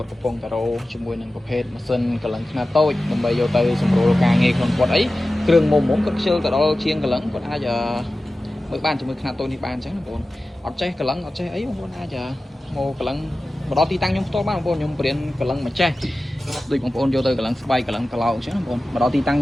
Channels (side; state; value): both; normal; correlation 0.95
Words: ត់កំពុងតរោជាមួយនឹងប្រភេទម៉ាស៊ីនកលឹងខ្នាតតូចដើម្បីយកទៅសម្រួលការងារក្នុងគាត់អីគ្រឿងមុំគាត់ខ្ជិលទៅដល់ជាងកលឹងគាត់អាចមើលបានជាមួយខ្នាតតូចនេះបានអញ្ចឹងបងប្អូនអត់ចេះកលឹងអត់ចេះអីបងប្អូនអាចមកកលឹងមកដល់ទីតាំងខ្ញុំផ្ទាល់បានបងប្អូនខ្ញុំបរៀនកលឹងមកចេះដូចបងប្អូនយកទៅកលឹងស្បែកកលឹងក្លោកអញ្ចឹងបងប្អូនមកដល់ទីតាំងខ